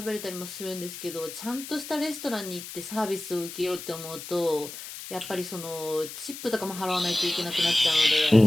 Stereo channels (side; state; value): left; noise; hiss, 11 dB below the sound